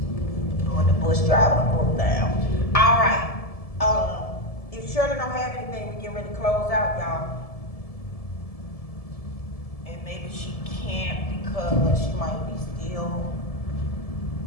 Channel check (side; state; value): right; late; 1.7 ms